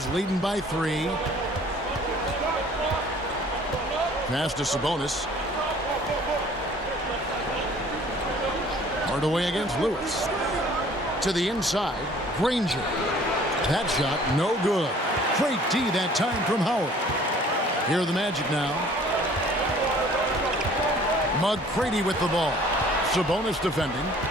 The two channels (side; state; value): both; normal; correlation 0.53